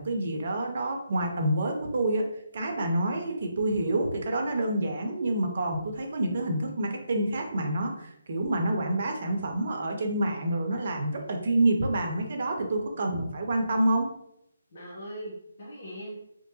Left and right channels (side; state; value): both; inverted; correlation -0.81